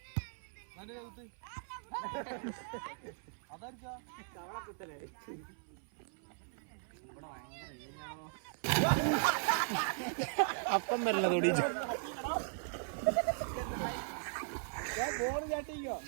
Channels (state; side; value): silent; left; 52 dB below the other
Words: അപ്പം വരല തൊടിച്ചു